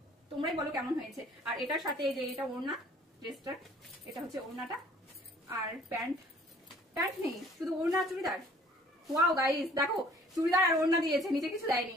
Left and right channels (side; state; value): both; normal; correlation 0.55